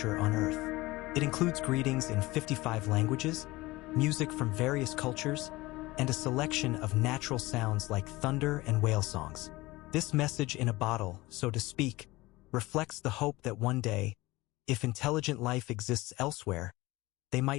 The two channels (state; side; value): quieter; right; 20.3 dB